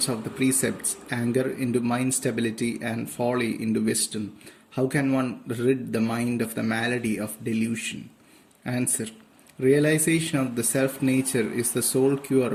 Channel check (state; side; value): identical; both; correlation 1.00